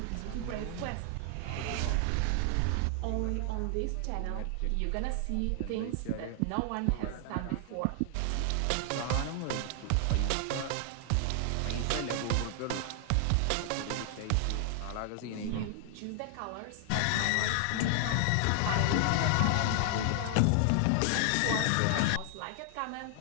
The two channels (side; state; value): both; different; correlation 0.00